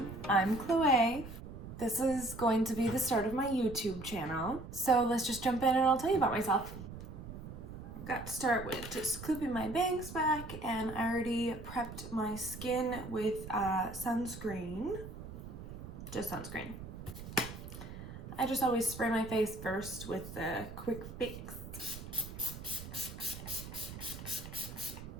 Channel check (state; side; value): noise; right; rumble, 11 dB below the sound